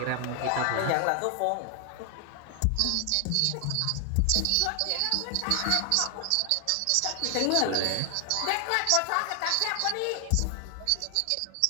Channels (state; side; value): different; both; correlation 0.00